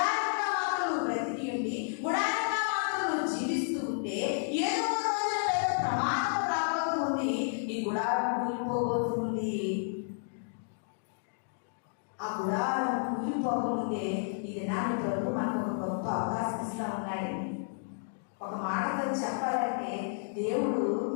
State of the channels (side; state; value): right; silent; digital silence